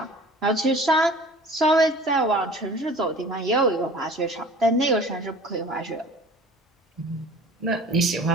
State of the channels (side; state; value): both; normal; correlation 0.44